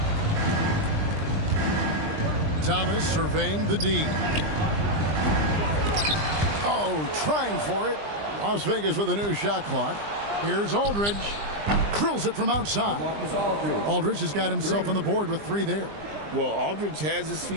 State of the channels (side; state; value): left; late; 20 ms